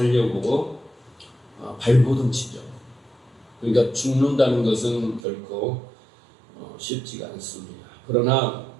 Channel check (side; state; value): left; drops out; at 5.2 s